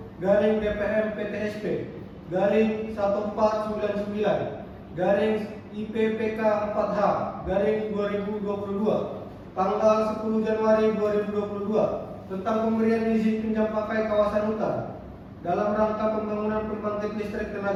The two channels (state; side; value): identical; both; correlation 1.00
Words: tanggal 10 Januari 2022 tentang pemberian izin pinjam pakai kawasan hutan dalam rangka pembangunan pembangkit listrik